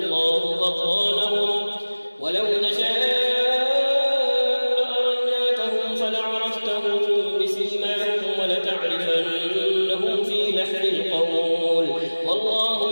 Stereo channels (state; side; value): inverted; both; correlation -1.00